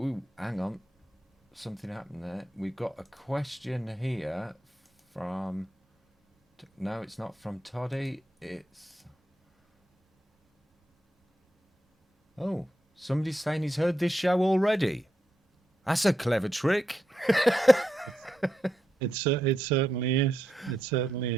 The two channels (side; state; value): both; normal; correlation 0.83